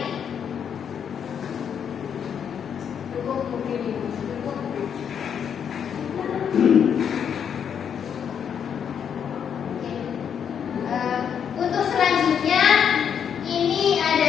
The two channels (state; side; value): quieter; right; 7.9 dB